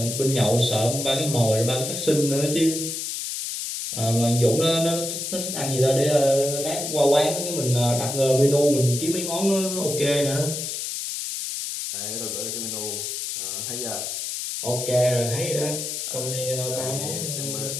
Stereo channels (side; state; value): left; noise; hiss, 4 dB below the sound